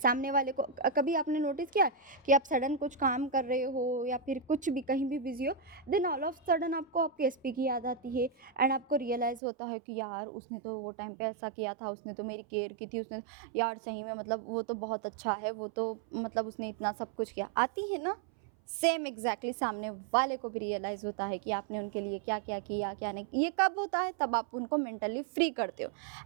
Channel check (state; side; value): drops out; left; at 9.4 s